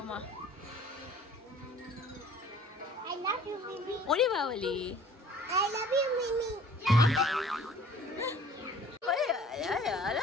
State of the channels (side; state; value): both; normal; correlation 0.51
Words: আই লাভ ইউ মিমি, ওরে Babli, I love you Mimi,